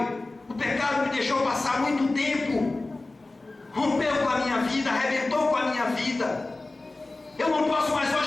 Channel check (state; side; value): quieter; right; 3.1 dB